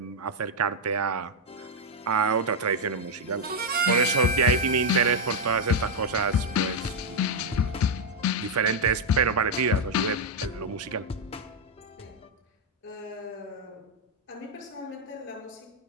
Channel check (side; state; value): both; normal; correlation -0.01